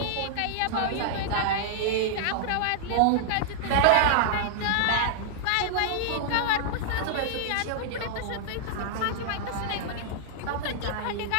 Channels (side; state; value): both; different; correlation -0.01